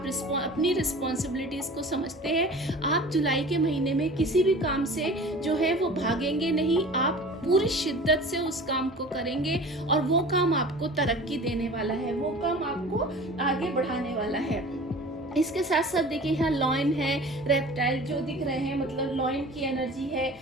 अपनी रिस्पॉन्सिबिलिटीज को समझते हैं। आप जुलाई के महीने में किसी भी काम से जो है वो भागेंगे नहीं, आप पूरी शिद्दत से उस काम को करेंगे और वो काम आपको तरक्की देने वाला है, वो काम आपको आगे बढ़ाने वाला है। इसके साथ साथ देखिए यहाँ लॉयन है, रेप्टाइल जो दिख रहे हैं, मतलब लॉयन की एनर्जी है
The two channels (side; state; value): both; normal; correlation 0.41